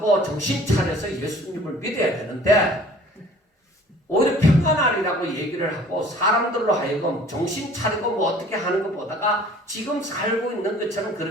정신 차려서 예수님을 믿어야 되는데, 오히려 평안하리라고 얘기를 하고 사람들로 하여금 정신 차리고 뭐 어떻게 하는 것보다가 지금 살고 있는 것처럼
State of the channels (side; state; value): both; normal; correlation 0.50